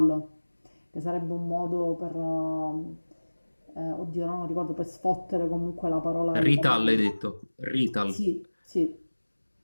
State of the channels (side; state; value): both; inverted; correlation -1.00